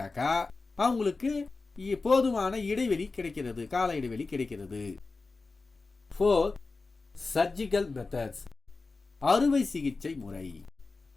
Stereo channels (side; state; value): right; quieter; 3.8 dB